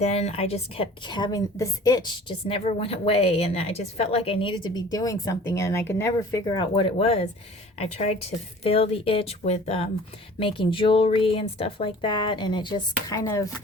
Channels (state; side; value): normal; both; correlation 0.46